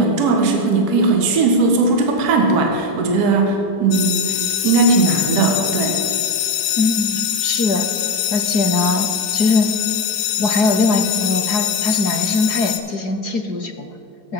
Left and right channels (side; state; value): right; late; 5.4 ms